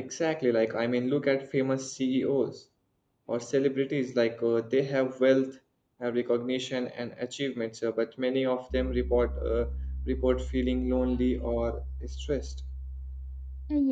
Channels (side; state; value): both; identical; correlation 1.00